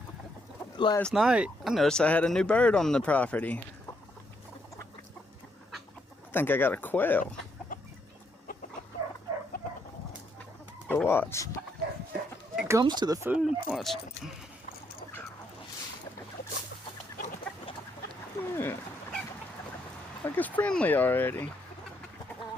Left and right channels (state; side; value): normal; both; correlation 0.75